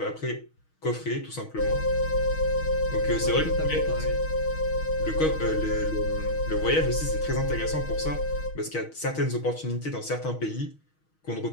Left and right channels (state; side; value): late; right; 6.4 ms